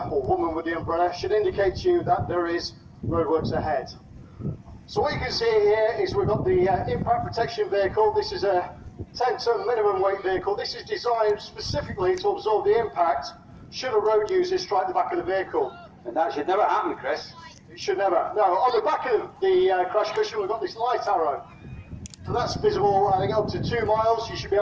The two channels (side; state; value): both; identical; correlation 1.00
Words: or woman with the umbrella, should indicate to you that there is roadworks ahead. So what you can see here is we've got the impact protection vehicle. This is a 10-ton minimum weight vehicle. This is designed specifically to absorb the impact should a road user strike the back of the vehicle. And that should never happen, Chris. It should never. No, on the back of the crash cushion we've got this light arrow. So that's visible, I think, up to 2 miles. You should be